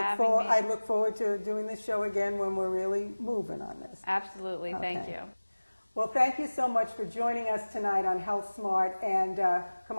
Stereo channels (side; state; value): both; inverted; correlation -1.00